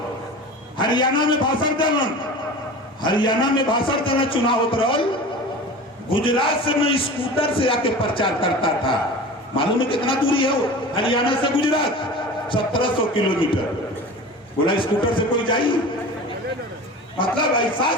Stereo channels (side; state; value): both; normal; correlation 0.35